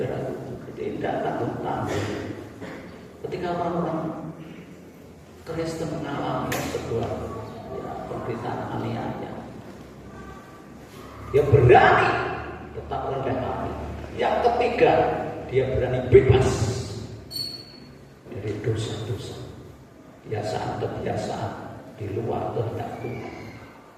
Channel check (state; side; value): identical; both; correlation 1.00